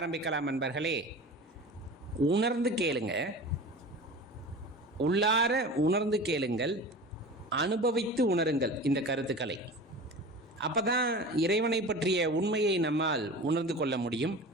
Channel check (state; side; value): normal; both; correlation 0.35